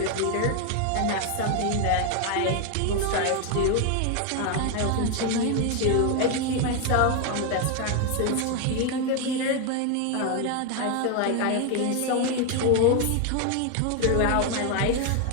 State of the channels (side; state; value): both; different; correlation 0.01